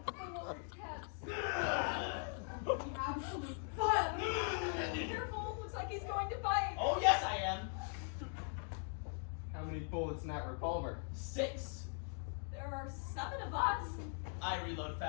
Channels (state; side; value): silent; right; 51 dB below the other